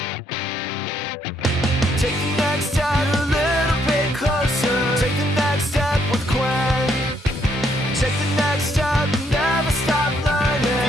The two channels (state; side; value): normal; both; correlation 0.72